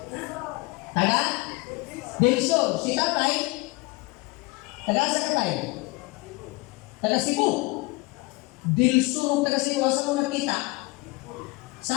Taga? Delso, si tatay, taga-asa ka tayo? Taga Cebu. Delso, taga Cebu, asa mo nakita?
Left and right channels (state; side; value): quieter; right; 24.8 dB